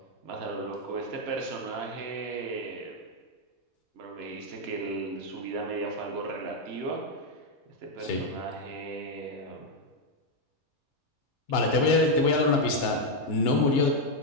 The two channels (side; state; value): both; normal; correlation 0.00